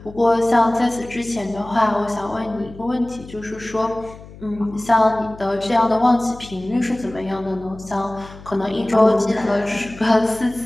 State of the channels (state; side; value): noise; left; hum, 18 dB below the sound